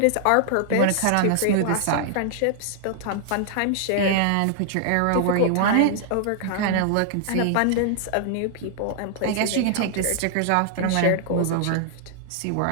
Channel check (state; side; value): different; both; correlation -0.01